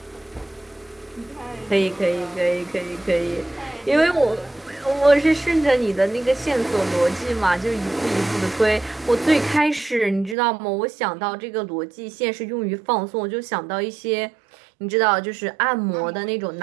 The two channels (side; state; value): left; drops out; at 10.4 s